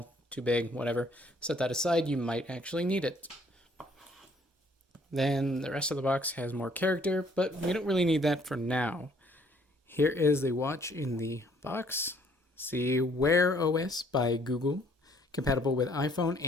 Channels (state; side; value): normal; both; correlation 0.62